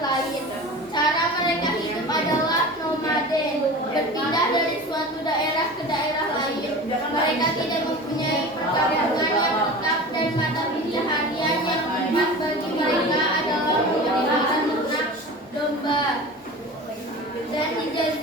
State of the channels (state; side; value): normal; both; correlation 0.35